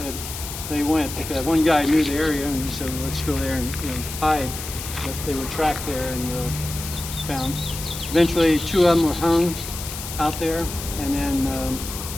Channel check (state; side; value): noise; left; hiss, 9 dB below the sound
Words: they went, because one guy knew the area and he said, well, let's go there and hide. But they were tracked there and found. Eventually 2 of them were hung out there, and then